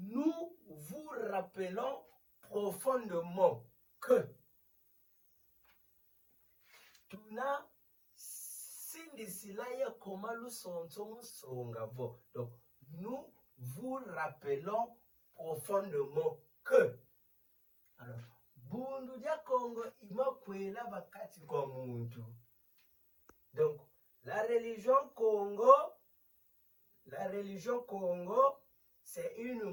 vous rappelons profondément que tuna sindisila ya koma lusonzo musonga vo. Donc, nous vous rappelons profondément que. Alors, bundu dia Congo ima kwela bakati kwa muntu. Donc, la religion Congo, c'est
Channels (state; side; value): identical; both; correlation 1.00